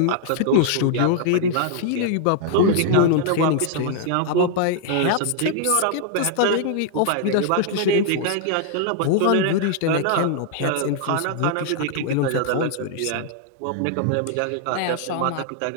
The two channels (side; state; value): both; different; correlation 0.00